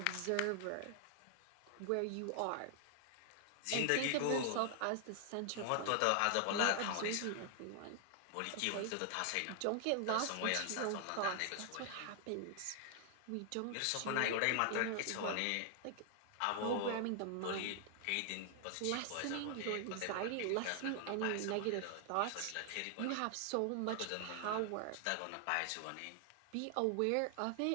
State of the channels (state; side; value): different; both; correlation 0.00